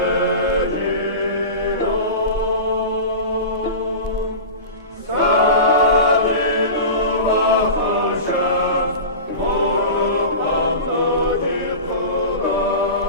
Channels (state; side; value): inverted; both; correlation -0.31